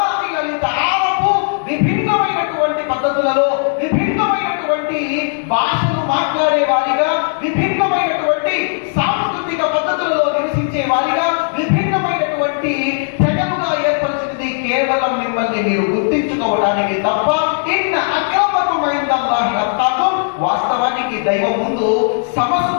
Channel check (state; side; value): silent; right; digital silence